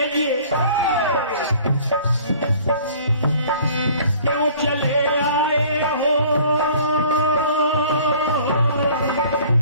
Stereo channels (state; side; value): inverted; both; correlation -0.51